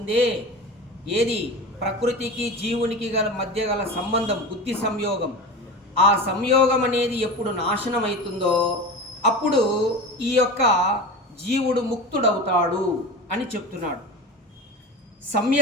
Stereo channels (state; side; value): normal; both; correlation 0.29